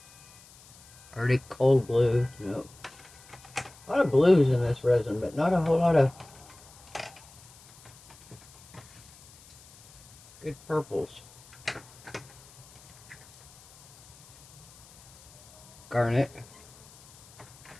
Arctic cold blue. No. A lot of blues in this resin, but not a whole lot of good purples. Garnet.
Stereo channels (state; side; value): noise; left; hiss, 23 dB below the sound